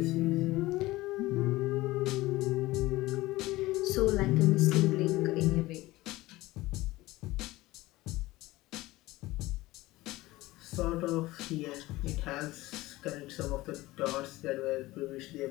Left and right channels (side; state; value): right; quieter; 18.8 dB